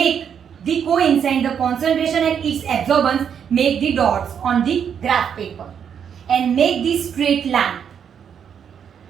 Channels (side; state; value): left; quieter; 7.9 dB